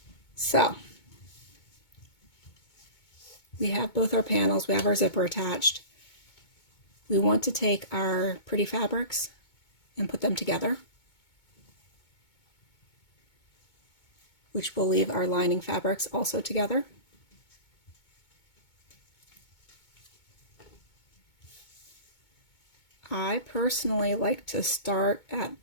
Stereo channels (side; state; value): right; late; 2.2 ms